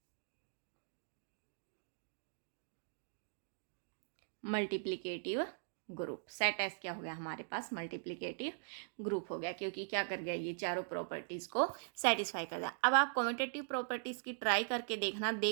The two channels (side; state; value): left; silent; digital silence